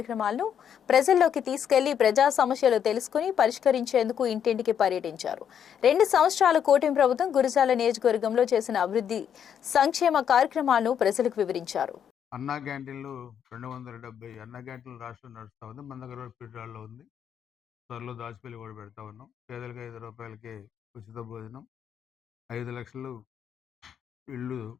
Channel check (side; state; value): right; quieter; 8.5 dB